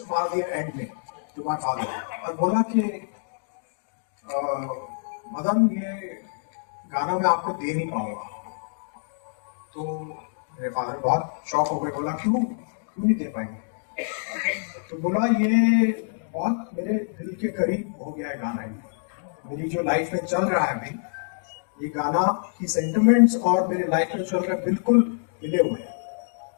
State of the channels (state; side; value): silent; right; digital silence